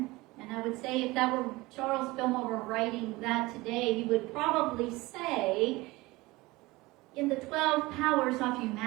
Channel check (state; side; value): quieter; left; 21.2 dB